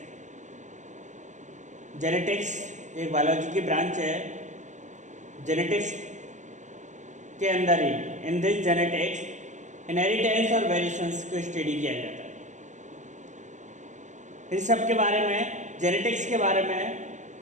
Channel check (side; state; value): left; late; 0.35 ms